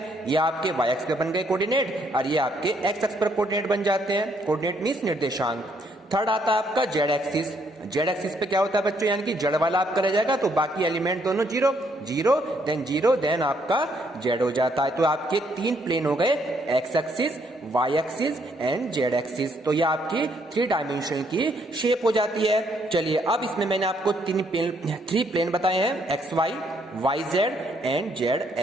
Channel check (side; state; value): both; normal; correlation 0.70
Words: ये आपके वाई एक्स पे बन गए कोऑर्डिनेट और ये आपके एक्स एक्स पर कोऑर्डिनेट बन जाते हैं। कोऑर्डिनेट मींस निर्देशांक। थर्ड आता है आपका जेड एक्सिस। जेड एक्सिस पे क्या होता है बच्चों, यानी कि जेड वाला आपका रह जाएगा, तो बाकी एलिमेंट दोनों 0 0 देन आपका जेड हो जाता है। तो आपके 3 प्लेन हो गए, X axis Y axis and Z axis. तो ये आपकी 3 डायमेंशन की शेप हो जाती है। चलिए अब इसमें मैंने आपको 3 प्लेन बताए हैं, X Y Y Z and Z